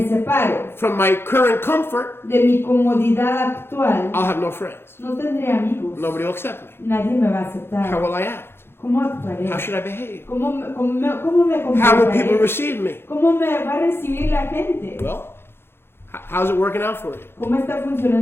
separo from my current comfort, de mi comodidad actual, I'll have no friends. no tendré amigos. Nobody will accept me. Nadie me va a aceptar. How will I act? ¿Cómo actuaré? How should I behave? ¿Cómo me How will people comportaré? receive me? ¿Cómo me va a recibir la gente? Well, How's it working out for you? ¿Cómo está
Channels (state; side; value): late; right; 0.11 ms